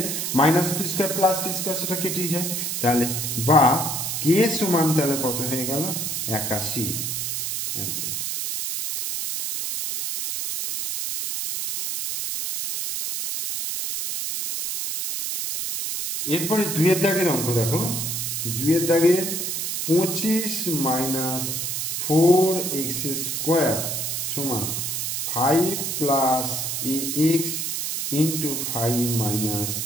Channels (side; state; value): right; noise; hiss, 2 dB below the sound